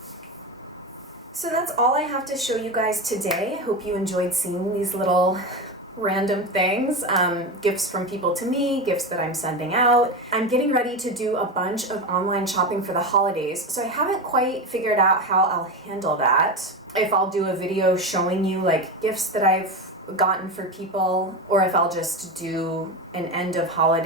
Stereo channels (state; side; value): normal; both; correlation 0.19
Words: So that's all I have to show you guys today. I hope you enjoyed seeing these little random things, gifts from people to me, gifts that I'm sending out. I'm getting ready to do a bunch of online shopping for the holidays, so I haven't quite figured out how I'll handle that. If I'll do a video showing you like gifts that I've gotten for people, or if I'll just do an end of